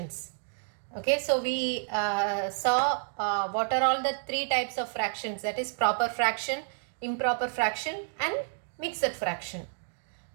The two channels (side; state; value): left; silent; digital silence